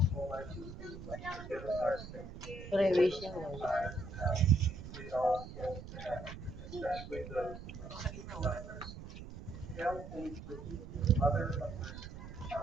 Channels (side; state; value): right; noise; rumble, 12 dB below the sound